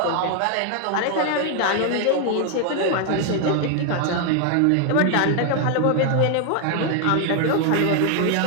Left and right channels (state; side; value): different; both; correlation 0.00